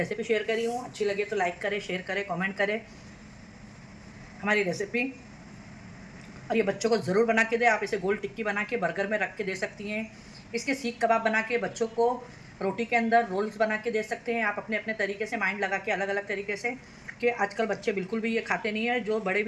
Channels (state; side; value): identical; both; correlation 1.00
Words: शेयर करी हूँ, अच्छी लगे तो लाइक करें, शेयर करें, कमेंट करें हमारी रेसिपी। और ये बच्चों को ज़रूर बना के दें। आप इसे गोल टिक्की बना के बर्गर में रख के दे सकती हैं। इसके सीख कबाब बना के बच्चों को रोटी के अंदर रोल्स बना के दे सकते हैं आप, अपने अपने तरीके से माइंड लगा के, अलग अलग तरीके से। कि आजकल बच्चे बिल्कुल भी ये खाते नहीं है, जो बड़े